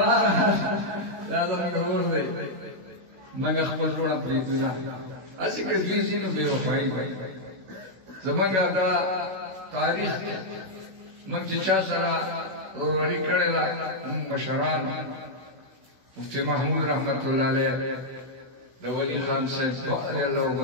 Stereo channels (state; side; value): late; left; 16 ms